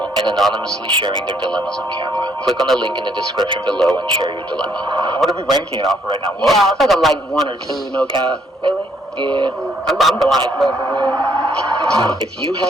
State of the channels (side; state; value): both; normal; correlation 0.69